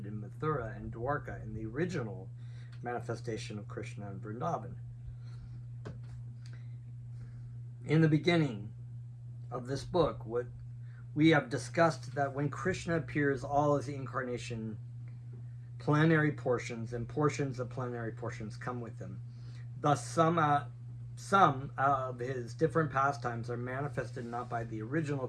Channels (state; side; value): identical; both; correlation 1.00